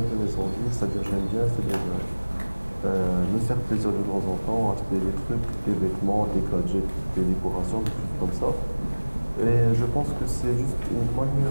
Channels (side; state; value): both; inverted; correlation -1.00